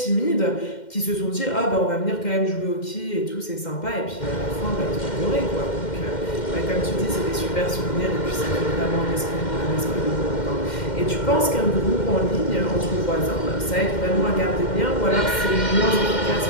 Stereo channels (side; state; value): right; late; 2.1 ms